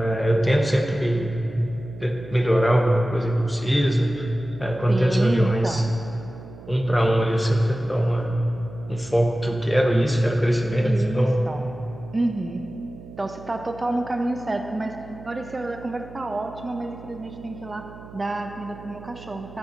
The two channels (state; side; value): noise; right; hum, 17 dB below the sound